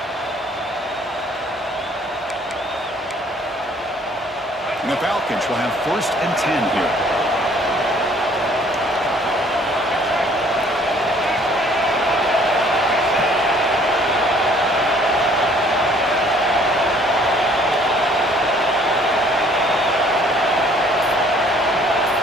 And the Falcons will have 1st and 10 here.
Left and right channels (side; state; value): both; normal; correlation 0.58